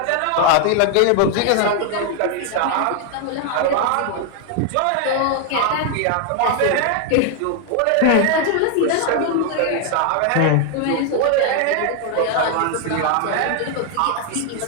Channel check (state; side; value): different; both; correlation 0.00